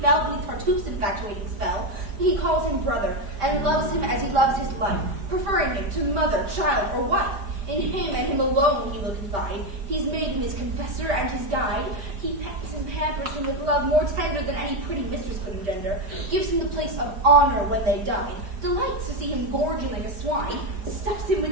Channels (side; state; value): left; late; 5.1 ms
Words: beneath Tartuffe's infatuating spell. He calls him brother and loves him as he loves his life, preferring him to mother, child, or wife. In him and him alone he will confide. He's made him his confessor and his guide. He pets and pampers him with love more tender than any pretty mistress could engender. Gives him the place of honor when they dine. Delights to see him gorging like a swine. Stuffs him